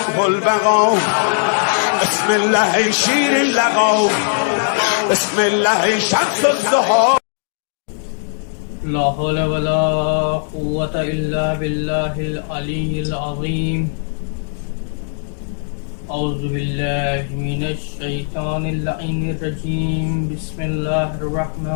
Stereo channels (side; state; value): right; silent; digital silence